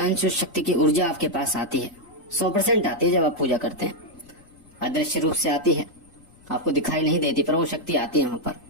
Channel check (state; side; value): noise; left; rumble, 28 dB below the sound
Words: उस शक्ति की ऊर्जा आपके पास आती है, 100% आती है जब आप पूजा करते हैं। अदृश्य रूप से आती है, आपको दिखाई नहीं देती, पर वो शक्ति आती है वहां पर।